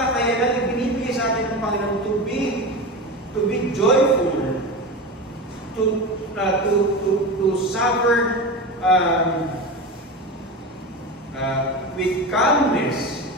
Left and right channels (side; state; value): both; normal; correlation 0.24